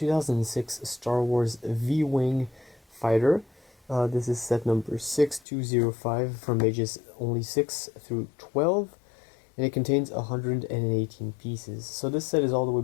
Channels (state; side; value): drops out; right; at 5.4 s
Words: Star Wars V-Wing fighter. This is set number 6205 from ages only 6 through 12, and it contains 118 pieces. So this set is all the way